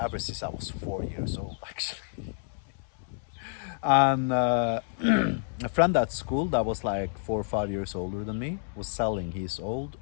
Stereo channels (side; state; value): right; silent; 58 dB below the other